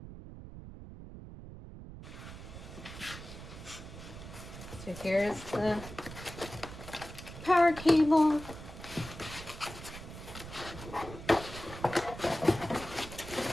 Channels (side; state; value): right; noise; rumble, 12 dB below the sound